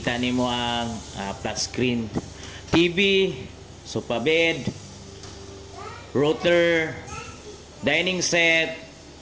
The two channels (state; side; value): identical; both; correlation 1.00